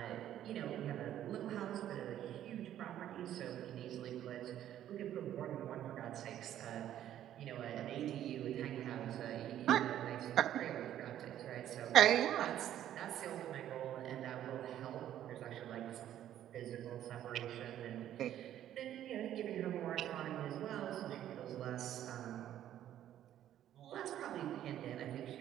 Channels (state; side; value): quieter; left; 11.6 dB